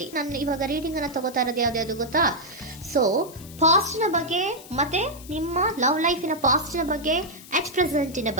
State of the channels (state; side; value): noise; left; hiss, 18 dB below the sound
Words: ನಾನು ಇವಾಗ ರೀಡಿಂಗ್ ಅನ್ನ ತಗೋತಾ ಇರೋದು ಯಾವ್ದು ಗೊತ್ತಾ? ಸೊ ಪಾಸ್ಟ್ ನ ಬಗ್ಗೆ ಮತ್ತೆ ನಿಮ್ಮ ಲವ್ ಲೈಫಿನ ಪಾಸ್ಟ್ ನ ಬಗ್ಗೆ, ಅಟ್ ಪ್ರೆಸೆಂಟಿನ